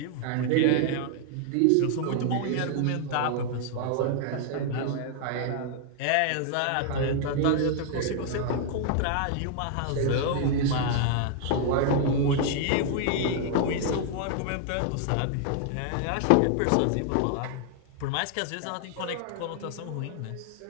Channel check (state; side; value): different; both; correlation 0.00